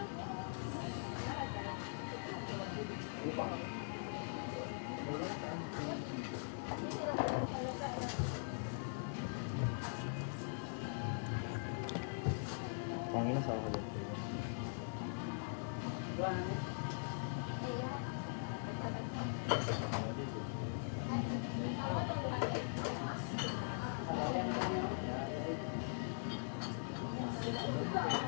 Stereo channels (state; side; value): silent; right; digital silence